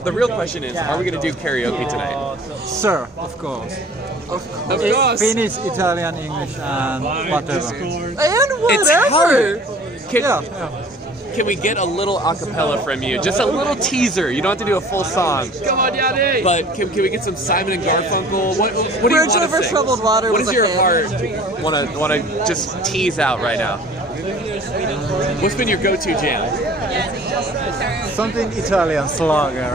real question is, are we going to do karaoke tonight? Sir, of course. Of course. Finnish, Italian, English, and whatever. And whatever. Can we get a little acapella from you? Just a little teaser. You don't have to do a full song. Come on, Yanni. But can we get some Simon and Garfunkel? What do you Bridge want to over sing? troubled water What was does a your hit. heart want to just tease out right now? What's been your go-to jam? Something Italian, Slager.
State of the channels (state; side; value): normal; both; correlation 0.48